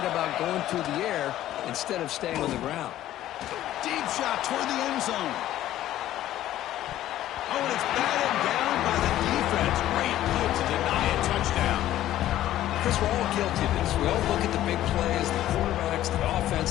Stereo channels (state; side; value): quieter; right; 13.4 dB